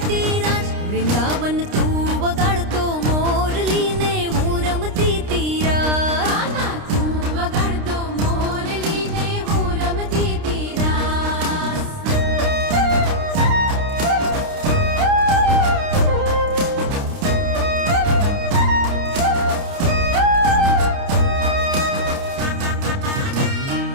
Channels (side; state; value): left; late; 29 ms